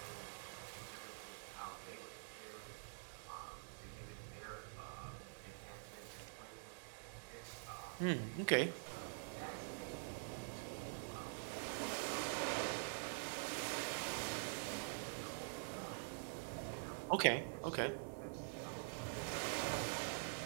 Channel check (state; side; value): silent; left; digital silence